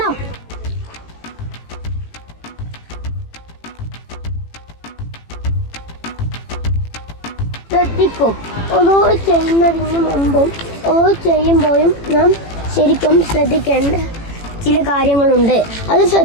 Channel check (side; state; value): right; late; 18 ms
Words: ശ്രദ്ധിക്കും. ഓരോ ചെയ്യുന്നതിന് മുമ്പും ഓരോ ചെയ്യുമ്പോഴും നാം ശരിക്കും ശ്രദ്ധിക്കേണ്ട ചില കാര്യങ്ങളുണ്ട്. അത്